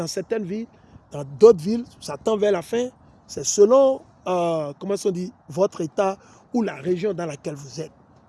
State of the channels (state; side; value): identical; both; correlation 1.00